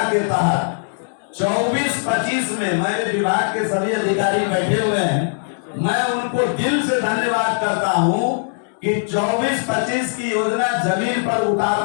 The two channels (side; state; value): right; silent; digital silence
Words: के तहत 24-25 में, मेरे विभाग के सभी अधिकारी बैठे हुए हैं, मैं उनको दिल से धन्यवाद करता हूं कि 24-25 की योजना जमीन पर